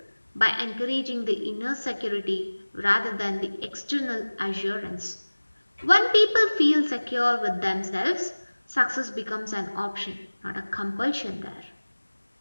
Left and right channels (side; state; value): both; inverted; correlation -1.00